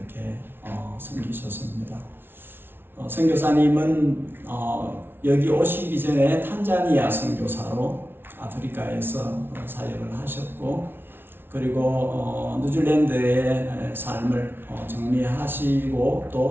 섬기셨습니다. 선교사님은 여기 오시기 전에 탄자니아 선교사로 아프리카에서 사역을 하셨고 그리고 뉴질랜드의 삶을 정리하시고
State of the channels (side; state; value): left; late; 0.11 ms